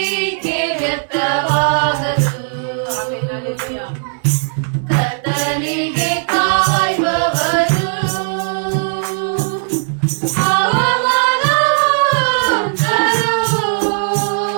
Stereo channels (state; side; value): silent; left; 68 dB below the other